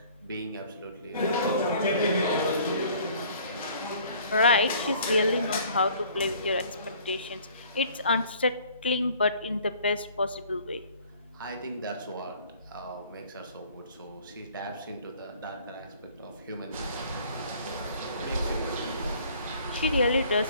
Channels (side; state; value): both; inverted; correlation -0.54